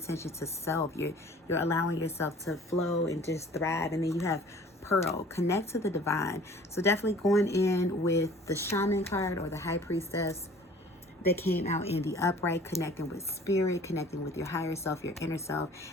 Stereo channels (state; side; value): normal; both; correlation 0.49